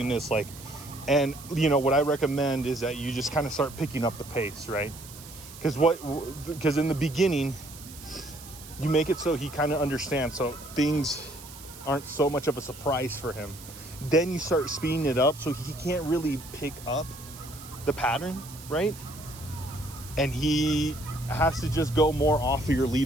this like, and what I recommend is that you just kind of start picking up the pace, right? Because in the beginning, you make it so he kind of understands, so things aren't so much of a surprise for him. Then you start speeding it up so he can't really pick up the pattern, right? And he has to just go more off of your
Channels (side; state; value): right; noise; hiss, 16 dB below the sound